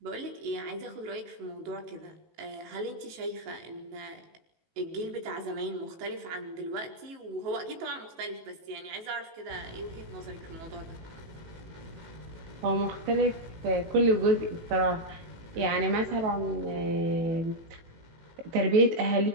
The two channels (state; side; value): late; left; 18 ms